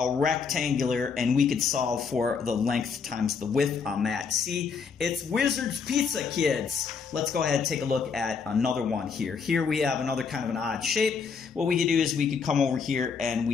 rectangular, and we could solve for the length times the width on that. See, it's Wizard's Pizza, kids. Let's go ahead and take a look at another one here. Here we have another kind of an odd shape. What we could do is we could come over here and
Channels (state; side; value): quieter; right; 5.7 dB